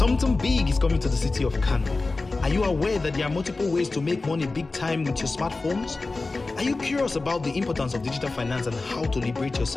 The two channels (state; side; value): quieter; right; 3.5 dB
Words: big is coming to the city of Kano. Are you aware that there are multiple ways to make money big time with your smartphones? Are you curious about the importance of digital finance and how to liberate